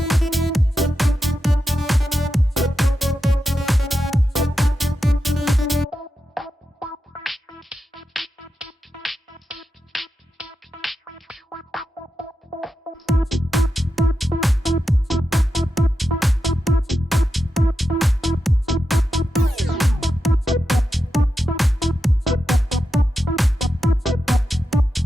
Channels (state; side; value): normal; both; correlation 0.89